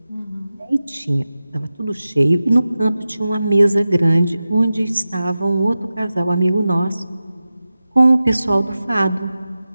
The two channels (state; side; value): inverted; both; correlation -0.94